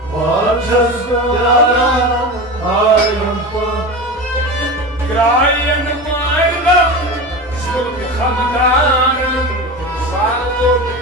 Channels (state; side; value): normal; both; correlation 0.26